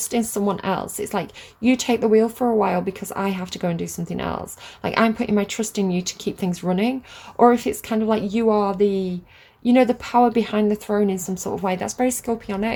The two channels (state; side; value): identical; both; correlation 1.00